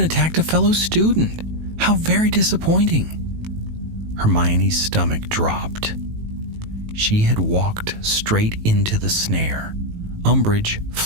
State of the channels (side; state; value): left; late; 18 ms